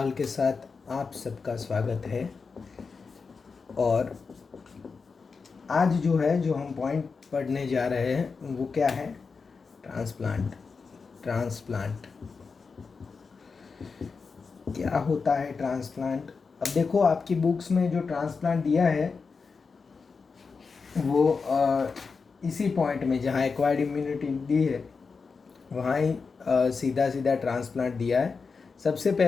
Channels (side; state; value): right; quieter; 4.9 dB